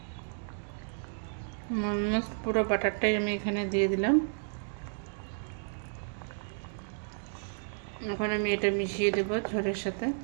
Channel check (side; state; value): left; silent; digital silence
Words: অলমোস্ট পুরো বাটারটাই আমি এখানে দিয়ে দিলাম। এখন আমি এটা মিশিয়ে দেবো ঝোলের সাথে।